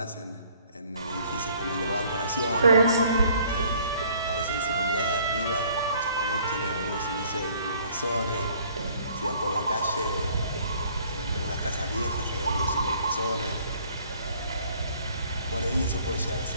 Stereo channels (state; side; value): inverted; both; correlation -0.58